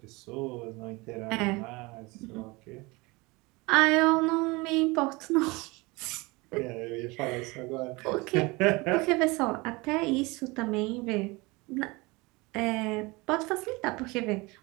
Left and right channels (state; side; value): quieter; left; 24.6 dB